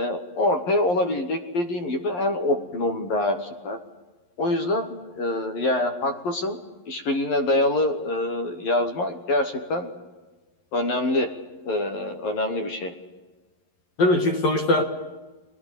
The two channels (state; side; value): late; right; 11 ms